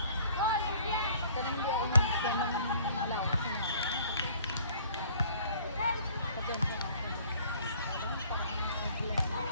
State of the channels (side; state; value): both; inverted; correlation -0.55